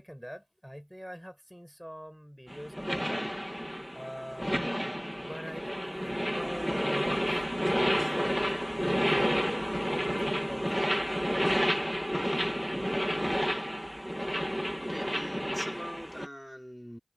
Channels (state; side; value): identical; both; correlation 1.00